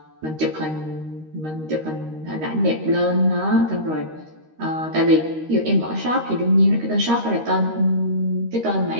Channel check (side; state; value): left; late; 13 ms